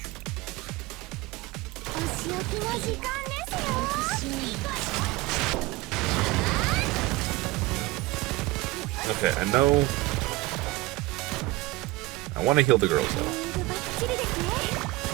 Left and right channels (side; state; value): left; quieter; 19.6 dB